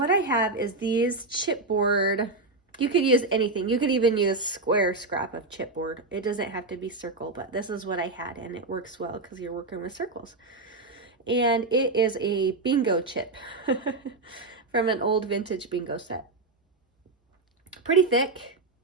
I have is these chipboard. You could use anything. You could even use square scrap of chipboard. It doesn't have to be circle, but this is what I had, and it works well because you're working with circles. And it is a bingo chip from an old vintage bingo set. Pretty thick,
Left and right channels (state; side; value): quieter; left; 3.3 dB